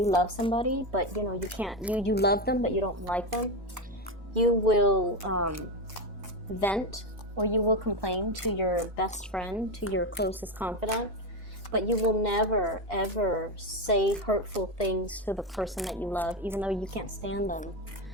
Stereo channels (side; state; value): both; normal; correlation 0.13